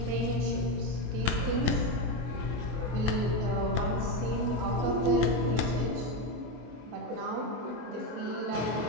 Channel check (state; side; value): late; left; 24 ms